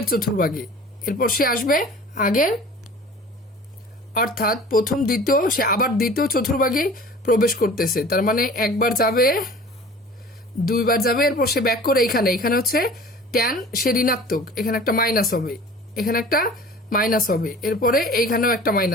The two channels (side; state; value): both; normal; correlation 0.43